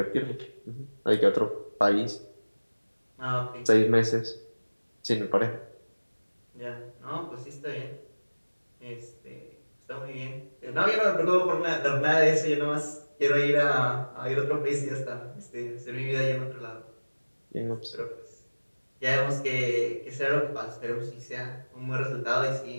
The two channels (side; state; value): both; inverted; correlation -1.00